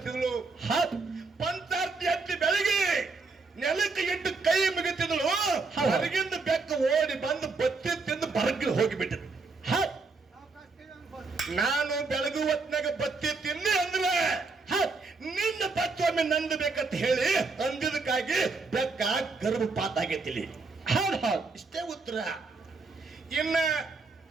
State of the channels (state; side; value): quieter; left; 4.0 dB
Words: ಹೌದ್ ಪಂಚಾರ್ತಿ ಎತ್ತಿ ಬೆಳಗಿ ನೆಲಕ್ಕೆ ಇಟ್ಟು ಕೈ ಮುಗಿತಿದ್ಳು. ಹೊರಗಿಂದ ಬೆಕ್ಕ ಓಡಿ ಬಂದು ಬತ್ತಿ ತಿಂದು ಬರಗಿ ಹೋಗಿಬಿಟ್ಟಿದ್ಳು. ಹೌದ್ ನಾನು ಬೆಳಗು ಹೊತ್ನಾಗ ಬತ್ತಿ ತಿನ್ನಿ ಅಂದ್ರೆ ನಿನ್ನ ಬತ್ತೊಮ್ಮೆ ನಂದು ಬೇಕಂತ ಹೇಳಿ ಅಂದಿದ್ದಕ್ಕಾಗಿ ಬೆಕ್ಕ ಗರ್ಭಪಾತ ಆಗೈತಿಲಿ. ಹೌದ್ ಹೌದ್ ಇಷ್ಟೇ ಉತ್ತರ. ಇನ್ನ